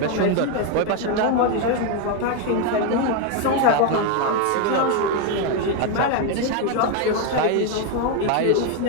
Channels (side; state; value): both; different; correlation 0.02